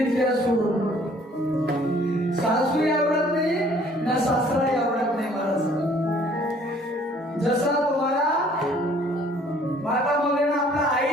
सोडून सासूही आवडत नाही ना सासराही आवडत नाही मला. जसा तुम्हाला माता मावलेना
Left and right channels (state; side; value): normal; both; correlation 0.58